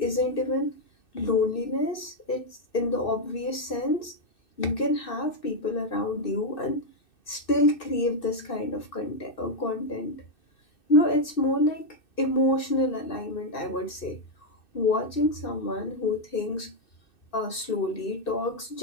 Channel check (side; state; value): right; late; 2.6 ms